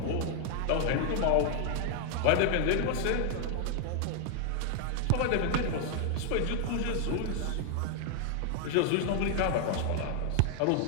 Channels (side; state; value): both; different; correlation 0.00